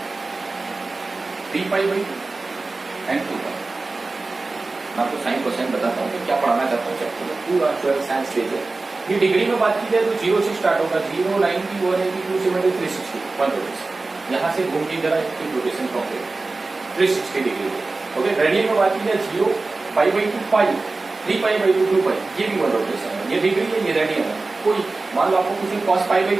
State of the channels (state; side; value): quieter; left; 3.5 dB